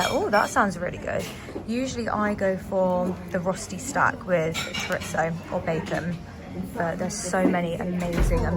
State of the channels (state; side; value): identical; both; correlation 1.00